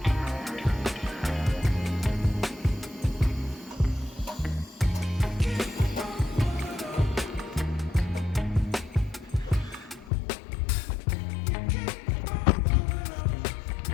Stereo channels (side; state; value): right; drops out; at 10.1 s